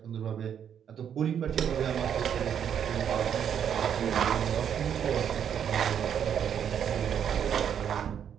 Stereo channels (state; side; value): quieter; left; 8.6 dB